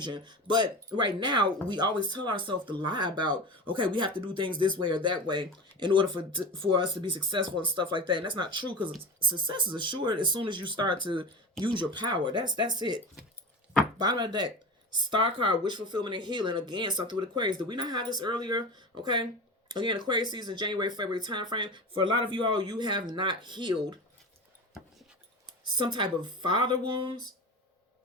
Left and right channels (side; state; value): both; normal; correlation 0.28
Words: But right now, we always tell ourselves to lie about, okay, we have to do things this way or that way in order for us to be successful and stuff like that. And that's not true, because success is assured as soon as you start to use your power. That's it. Bottom of the deck. Star card, wish fulfillment and healing. Again, something with Aquarius. Did we not have this earlier? Okay. Again, Aquarius season, January, February time frame. For a lot of you all, you have not healed some type of father wounds.